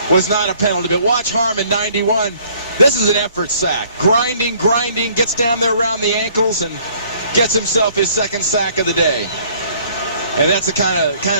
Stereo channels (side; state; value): both; inverted; correlation -0.59